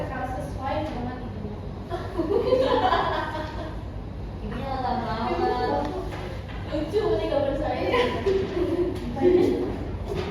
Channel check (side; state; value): both; identical; correlation 1.00